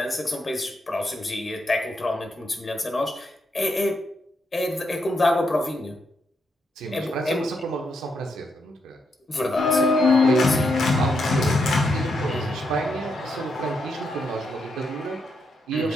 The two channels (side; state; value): both; normal; correlation 0.81